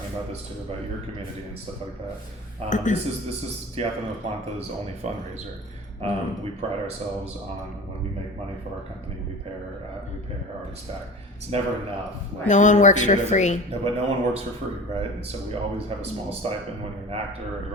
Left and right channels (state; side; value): normal; both; correlation 0.36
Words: about this too, about your community and stuff like that. This is Teatro de Planta's only fundraiser. We pride ourselves on when we make money for our company, we pay our artists back. It's never enough. Like, No one works theater for doesn't- free. No, but no one works for free, right? And so we always have a small stipend when you're an actor or a